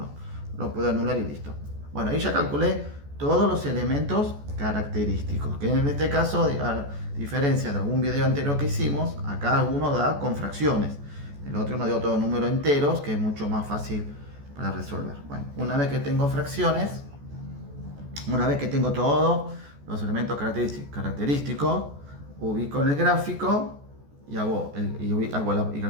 Lo puedo anular y listo. Bueno, ahí ya calculé todos los elementos característicos. Que en este caso, a diferencia de algún video anterior que hicimos, acá alguno da con fracciones. El otro nos dio todo número enteros, que es mucho más fácil para resolver. Bueno, una vez que tengo fracciones, una vez que tengo todos los elementos característicos, ubico en el gráfico y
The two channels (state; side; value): late; left; 14 ms